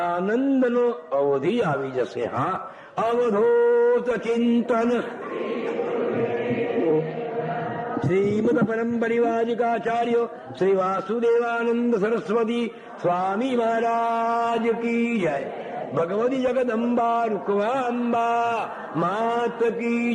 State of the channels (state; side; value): identical; both; correlation 1.00